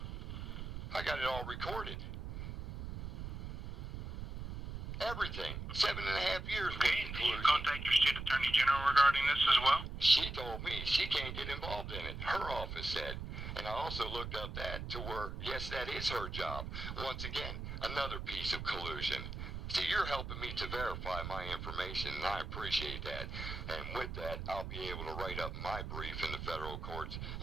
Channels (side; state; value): right; noise; rumble, 6 dB below the sound